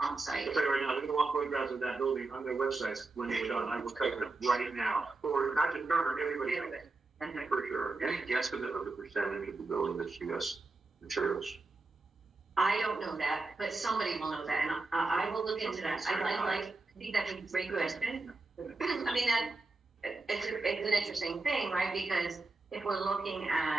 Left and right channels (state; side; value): quieter; left; 3.4 dB